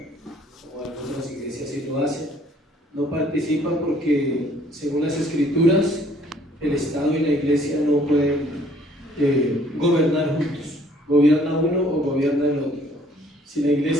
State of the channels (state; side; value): normal; both; correlation 0.60